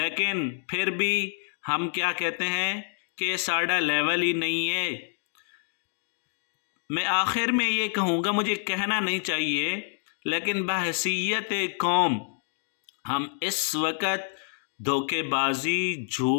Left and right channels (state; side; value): silent; right; digital silence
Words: پھر بھی ہم کیا کہتے ہیں کہ ساڑھا لیول ہی نہیں ہے. میں آخر میں یہ کہوں گا، مجھے کہنا نہیں چاہیے، لیکن بحیثیت قوم ہم اس وقت دھوکے بازی،